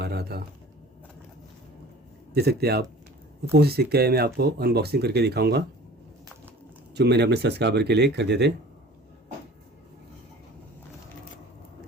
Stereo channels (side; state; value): both; normal; correlation 0.44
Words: रहा था। देख सकते हैं आप, कौन सी सिक्के है मैं आपको अनबॉक्सिंग करके दिखाऊंगा जो मैंने अपने सब्सक्राइबर के लिए खरीदे थे।